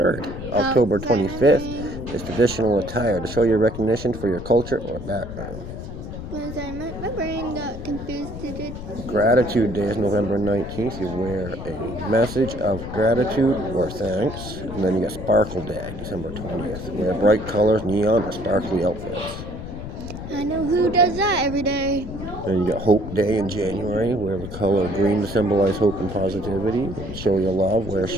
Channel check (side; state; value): left; noise; rumble, 9 dB below the sound